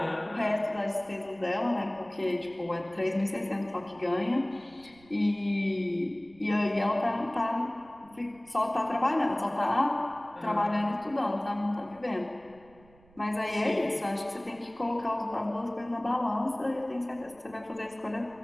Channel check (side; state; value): right; noise; rumble, 27 dB below the sound